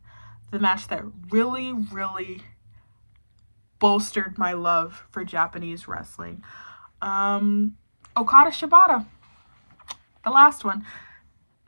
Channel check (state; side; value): inverted; both; correlation -1.00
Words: the match that really, really bolstered my love for Japanese wrestling, Okada Shibata, the last one.